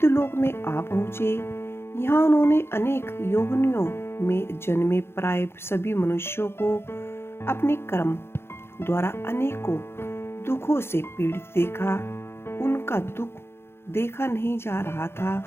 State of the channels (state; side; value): late; right; 0.12 ms